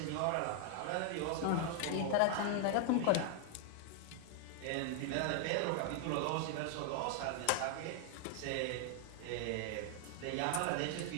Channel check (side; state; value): both; different; correlation 0.00